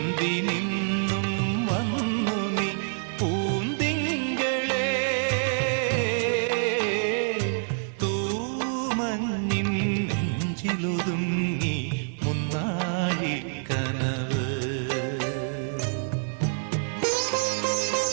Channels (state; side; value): silent; left; 60 dB below the other